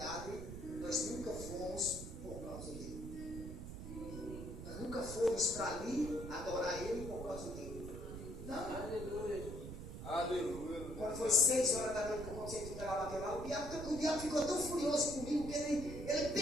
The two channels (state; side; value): noise; right; rumble, 9 dB below the sound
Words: nós nunca fomos por causa dele. Nós nunca fomos para ali adorar ele por causa dele. Não. Aleluia. Aleluia. Quando foi 6 horas da noite que eu consegui tutelar bateu lá, o diabo ficou tão furioso comigo que ele